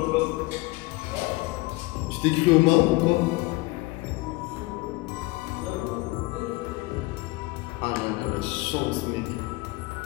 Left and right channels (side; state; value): right; quieter; 22.0 dB